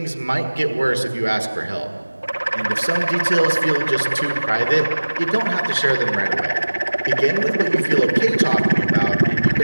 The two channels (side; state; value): both; inverted; correlation -1.00